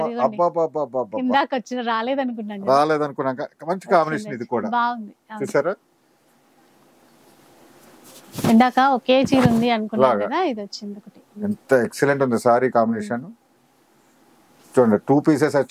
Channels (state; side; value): identical; both; correlation 1.00